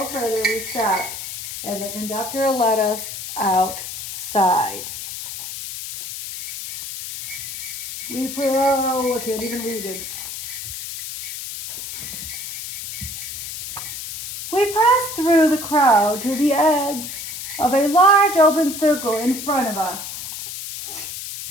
further, we stopped, and the conductor let us outside. I can't even read it. We pressed through the crowd to the edge of a large open circle in front of us.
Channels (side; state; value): left; noise; hiss, 8 dB below the sound